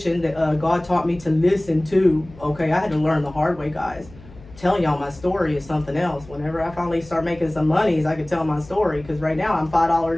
that God taught me to listen to. Okay, I had to learn the hard way, guys. Telling y'all my story is something else. Whenever I finally start making some monies, I can tell my story. Because right now I'm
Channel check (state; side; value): noise; left; hum, 20 dB below the sound